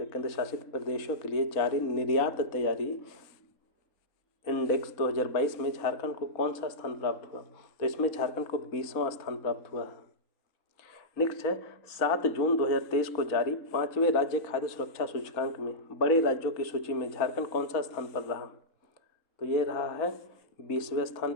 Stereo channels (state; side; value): late; right; 4.1 ms